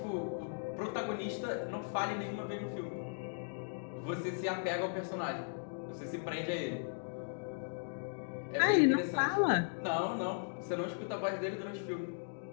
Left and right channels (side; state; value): right; silent; digital silence